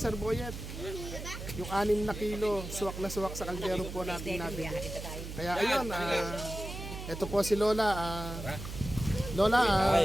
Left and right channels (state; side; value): noise; right; hum, 9 dB below the sound